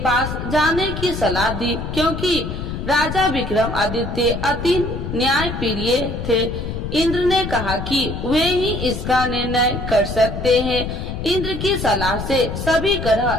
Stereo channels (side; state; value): left; noise; rumble, 5 dB below the sound